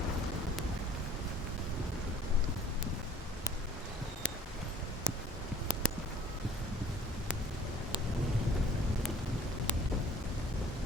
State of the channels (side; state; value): both; normal; correlation 0.52